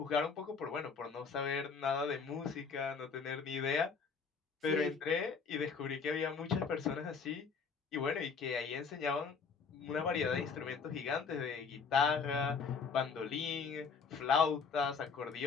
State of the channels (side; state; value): right; quieter; 5.4 dB